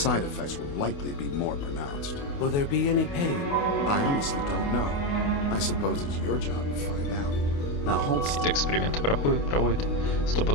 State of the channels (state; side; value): late; right; 28 ms